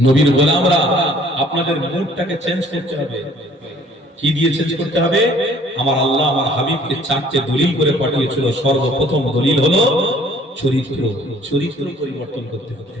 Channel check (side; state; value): both; normal; correlation 0.56